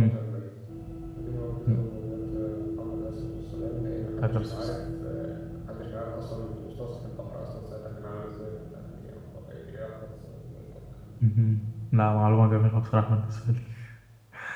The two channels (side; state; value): both; identical; correlation 1.00